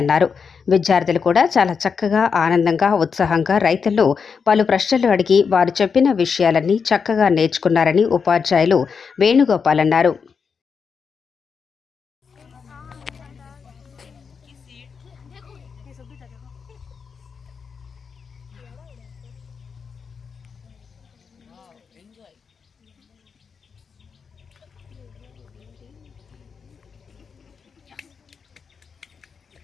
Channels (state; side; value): quieter; right; 5.9 dB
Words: అన్నారు. విద్యార్థులు కూడా చాలా చక్కగా, ఆనందంగా, ఉత్సాహంగా రైతులు పలు ప్రశ్నలు అడిగి వారు చెప్పిన విషయాలన్నీ చక్కగా నేర్చుకున్నారని ఉపాధ్యాయులు వేణుగోపాల్ అన్నారు.